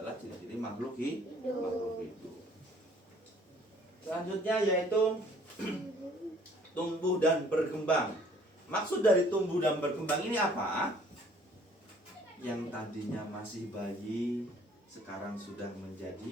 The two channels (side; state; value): both; normal; correlation 0.58